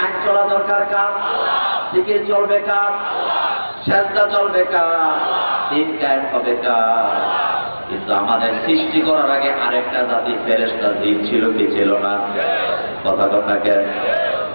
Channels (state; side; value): inverted; both; correlation -1.00